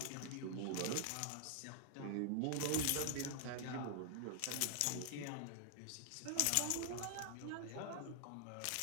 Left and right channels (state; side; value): different; both; correlation -0.01